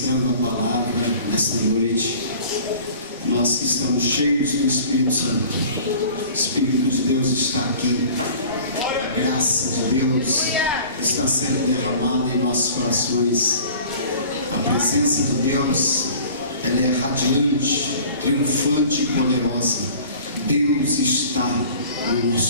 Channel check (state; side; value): inverted; both; correlation -0.45